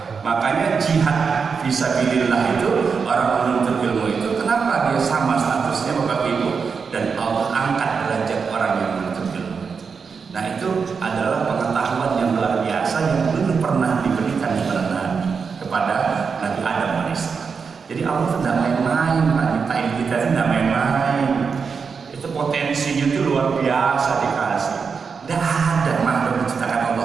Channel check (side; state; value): left; quieter; 5.6 dB